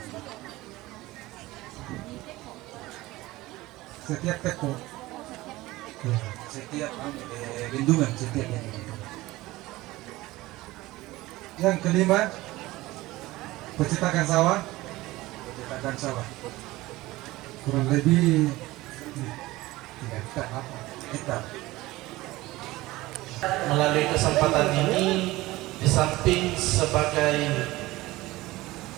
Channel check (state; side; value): quieter; left; 18.8 dB